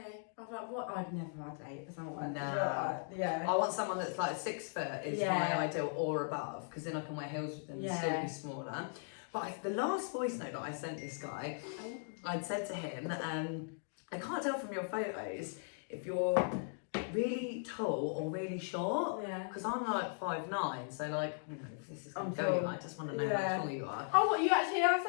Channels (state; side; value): silent; right; digital silence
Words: I was like, what? I'd never had a date with someone. Nah. Yeah. I want someone that's like 6 foot is Yeah. my ideal or above, because then I can wear heels with them and still Yeah. be smaller. But the last voice note that I sent this guy, I'd said to him, I can't tell from your photos if you're really tall or really short, Yeah. because I'm like 5'9", so like, you know, if this is going I'm to go, tall. I just want to know Yeah. how tall you are. Oh, what, you actually have